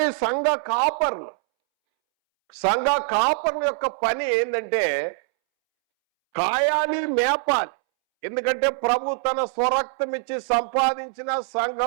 సంఘ కాపర్ల యొక్క పని ఏంటంటే కాయాలి, మేపాలి. ఎందుకంటే ప్రభు తన స్వరక్తం ఇచ్చి సంపాదించిన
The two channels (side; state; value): left; silent; 63 dB below the other